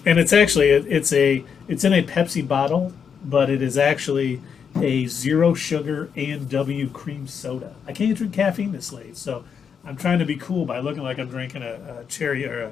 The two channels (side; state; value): right; quieter; 6.9 dB